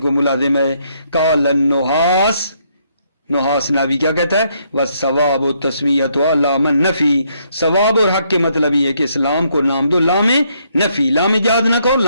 ملازم ہے. قال النحاس، نحاس ناوی کیا کہتا ہے، والثواب تسمیۃ لام النفی، ثواب اور حق کے مطلب یہ ہے کہ اس لام کو نام دو لام نفی، لام جہاد نہ کہو،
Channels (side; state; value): both; inverted; correlation -0.72